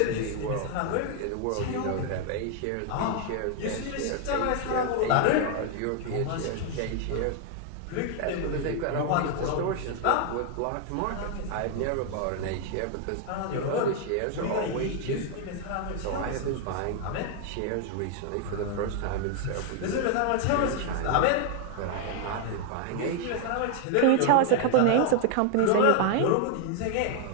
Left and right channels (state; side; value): different; both; correlation 0.00